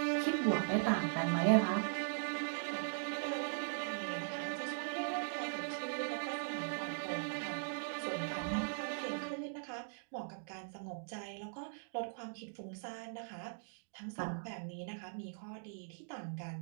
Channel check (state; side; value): silent; left; digital silence